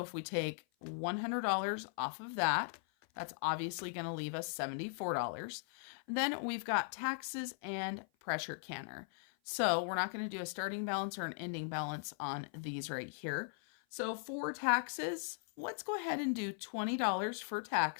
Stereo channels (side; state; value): right; silent; 52 dB below the other